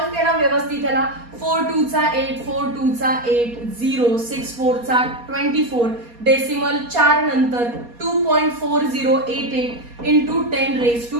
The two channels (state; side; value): late; left; 4.2 ms